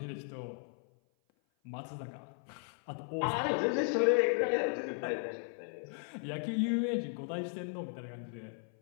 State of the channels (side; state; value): right; silent; 54 dB below the other